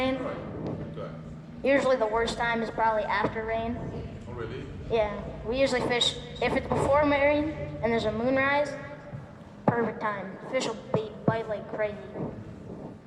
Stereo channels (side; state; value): both; identical; correlation 1.00